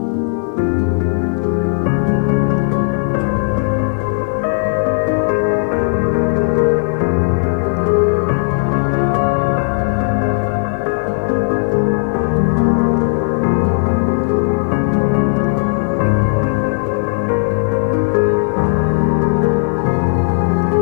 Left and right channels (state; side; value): silent; right; 64 dB below the other